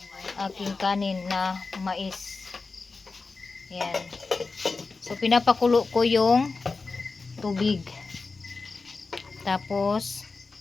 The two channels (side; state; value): right; quieter; 4.1 dB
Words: aking kanin na mais. Yan. So pinapakulo ko yung tubig. Tapos